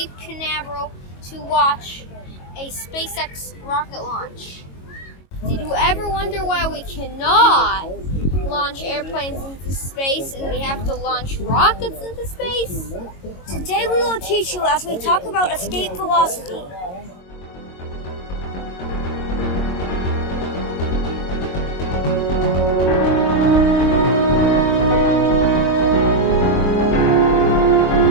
Canaveral to watch a SpaceX rocket launch. Did you ever wonder why we cannot launch airplanes into space and we have to launch rockets into space? Today we will teach you as we talk about escape velocity.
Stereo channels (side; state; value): right; late; 22 ms